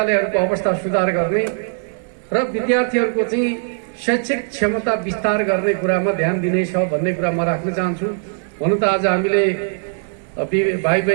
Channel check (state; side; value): silent; left; digital silence